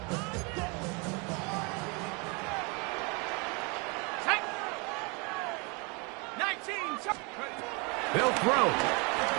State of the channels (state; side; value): quieter; left; 31.1 dB